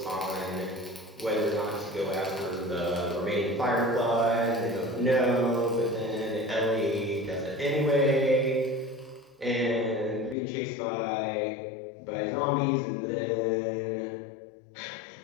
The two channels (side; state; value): right; drops out; at 10.4 s